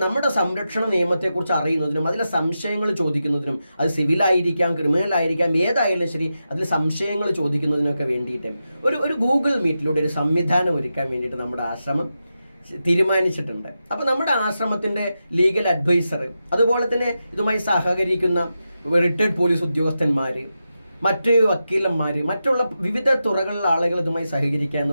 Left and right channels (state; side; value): inverted; both; correlation -0.89